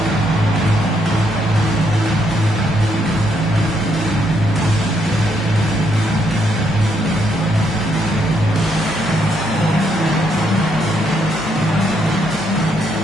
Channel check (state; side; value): normal; both; correlation 0.75